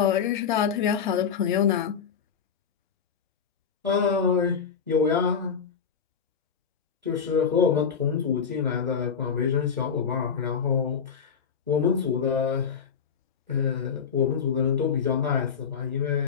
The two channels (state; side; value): quieter; right; 6.8 dB